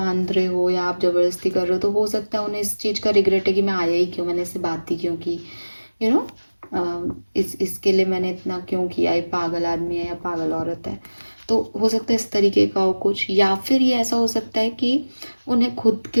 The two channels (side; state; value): both; inverted; correlation -1.00